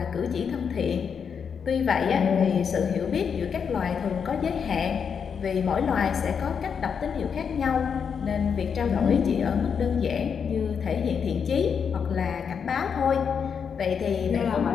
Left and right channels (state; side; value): quieter; right; 6.7 dB